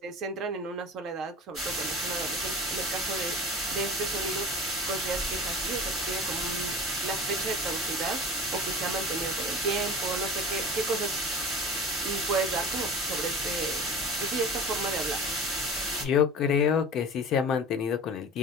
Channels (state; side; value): normal; both; correlation 0.37